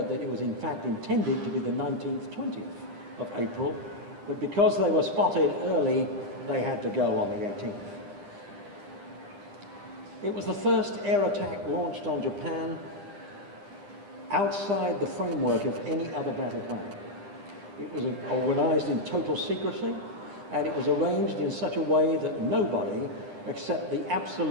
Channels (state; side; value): late; left; 9.9 ms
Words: that it was in fact intended to be the 19th, 20th of April, but because they were spotted early, they had to go on the 18th. It was the first air attack launched on Japan outside the framework of any other battle plan. It was organized in total secrecy, and it was arranged in such a way that nobody, except the